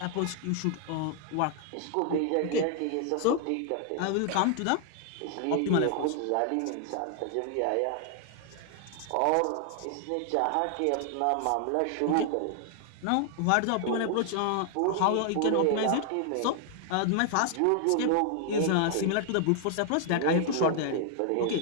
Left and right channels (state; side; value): different; both; correlation 0.00